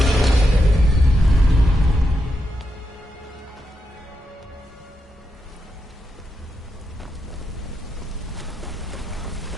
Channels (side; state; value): both; normal; correlation 0.85